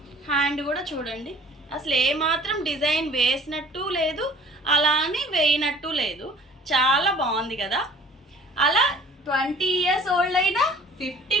హ్యాండ్ కూడా చూడండి, అసలు ఏమాత్రం డిజైన్ వేసినట్టు లేదు, అలానే వేయనట్టు లేదు. చాలా బాగుంది కదా. అలా 20 ఇయర్స్ ఓల్డ్ అయినా,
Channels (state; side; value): normal; both; correlation 0.50